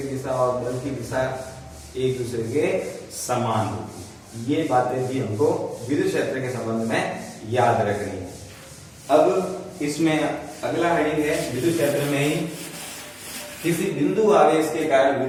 दिशा और बल की दिशा एक दूसरे के समान होगी। ये बातें भी हमको विद्युत क्षेत्र के संबंध में याद रखनी है। अब इसमें अगला हेडिंग है विद्युत क्षेत्र में ही किसी बिंदु आवेश के कारण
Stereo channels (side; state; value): both; identical; correlation 1.00